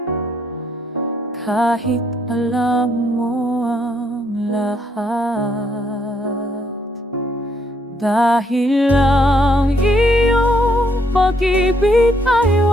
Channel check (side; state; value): both; normal; correlation 0.72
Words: kahit alam mo ang lahat. Dahil ang iyong pag-ibig ay